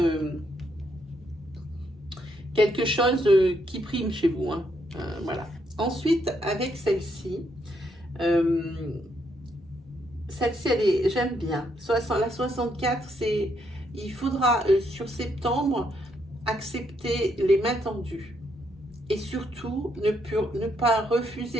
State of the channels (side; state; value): both; normal; correlation 0.75